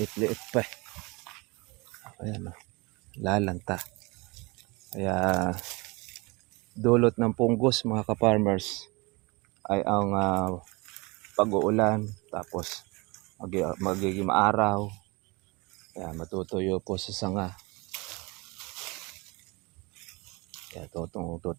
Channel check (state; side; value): quieter; left; 26.3 dB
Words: pa. Ayan, lalanta. Kaya dulot ng punggos mga ka-farmers ay ang pag-uulan, tapos magiging maaraw. Kaya matutuyo po sa sanga. Kaya